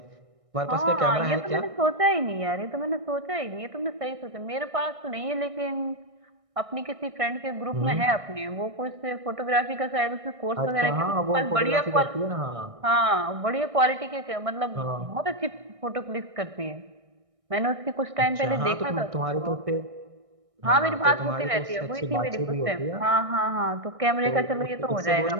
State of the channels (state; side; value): late; left; 1.6 ms